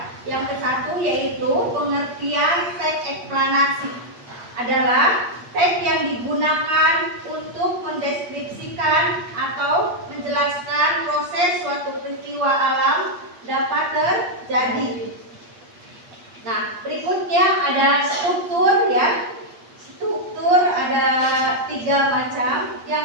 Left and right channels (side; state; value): left; late; 8.4 ms